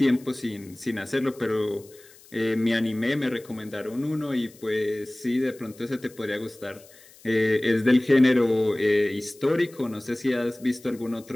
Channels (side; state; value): left; noise; hiss, 24 dB below the sound